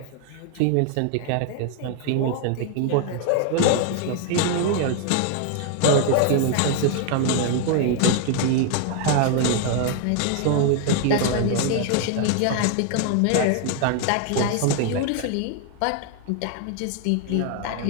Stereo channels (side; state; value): both; different; correlation 0.00